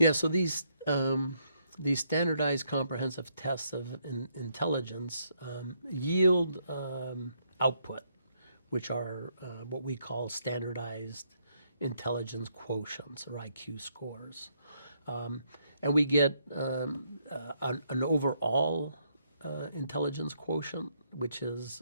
so these standardized comprehensive tests of intelligence yield output, which are what we call standardized intelligence quotients or IQ scores. And we get an overall intelligence quotient, which is,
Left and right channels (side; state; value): both; inverted; correlation -0.73